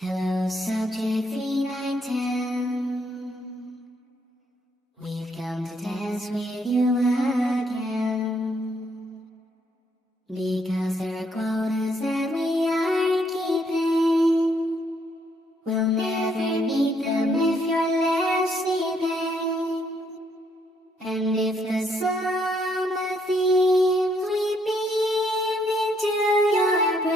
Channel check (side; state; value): both; normal; correlation 0.71